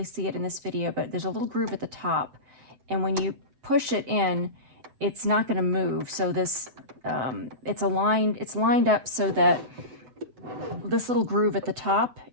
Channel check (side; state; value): left; late; 7.9 ms